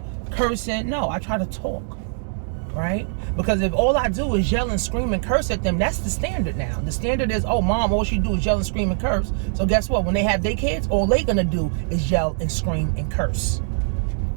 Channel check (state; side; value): silent; left; 64 dB below the other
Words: cursing, no, I try to talk, right? Because if all I do is yell and scream and curse at them, that's the standard now. The standard is, oh, mom, all she do is yell and scream and curse. So guess what? When they have their kids, all they gonna do is yell and scream and curse,